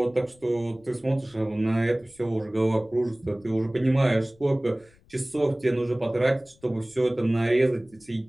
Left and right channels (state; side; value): noise; left; rumble, 29 dB below the sound